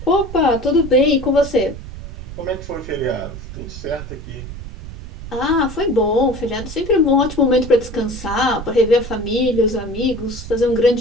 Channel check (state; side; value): noise; right; rumble, 11 dB below the sound